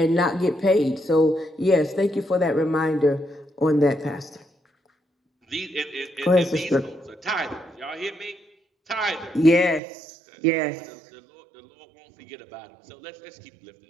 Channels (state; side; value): drops out; left; at 9.8 s